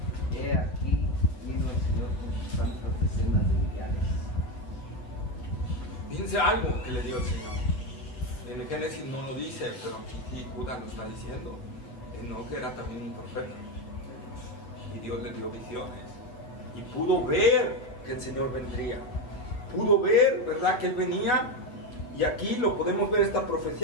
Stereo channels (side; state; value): right; late; 8.5 ms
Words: He aquí vino el Señor con sus santas decenas de millares. Fíjense algo que le dio el Señor. En el Génesis no lo dice, pero aquí Judas lo está diciendo. Enoc era también un profeta. Y Dios le dio visiones. Y pudo ver que el Señor vendría. Pudo ver, ¿verdad?, que Él venía. Y aquí lo podemos ver, esta